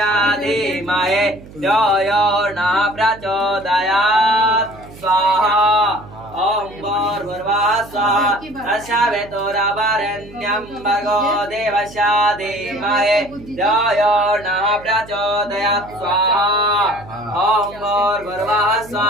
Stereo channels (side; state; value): right; noise; hum, 19 dB below the sound